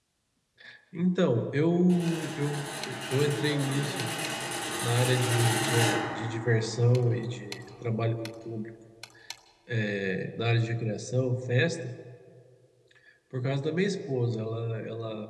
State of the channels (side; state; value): both; identical; correlation 1.00